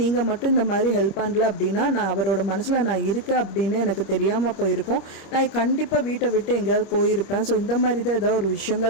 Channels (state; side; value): late; right; 26 ms